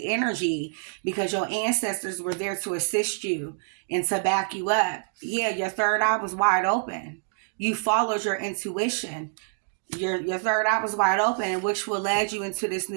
energy because your ancestors were there to assist you and to back you up. Yeah, your third eye was wide open. You followed your intuition. Your third eye was wide open, which will lead you into this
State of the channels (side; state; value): left; silent; digital silence